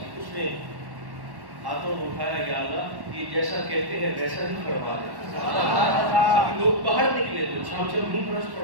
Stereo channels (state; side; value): late; left; 1.1 ms